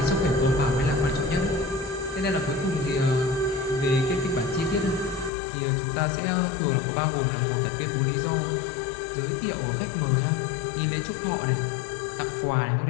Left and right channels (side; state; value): right; drops out; at 5.3 s